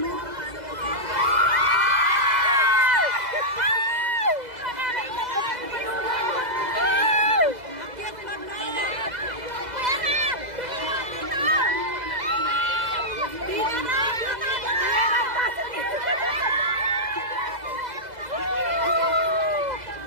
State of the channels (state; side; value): late; left; 2.0 ms